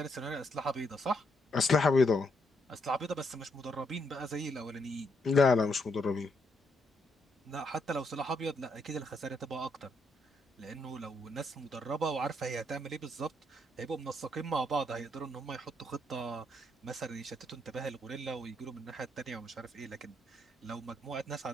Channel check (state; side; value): normal; both; correlation 0.76